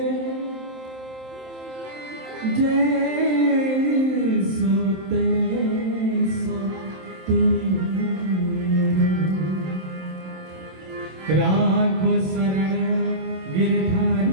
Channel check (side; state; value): left; late; 27 ms